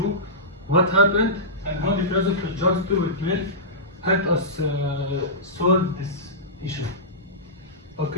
what happened, and how the philosopher John Stuart Mill helped us solve this issue.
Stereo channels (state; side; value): normal; both; correlation -0.17